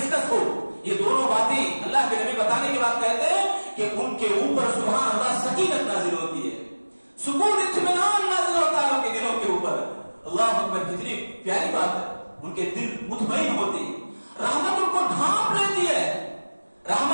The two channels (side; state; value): both; inverted; correlation -1.00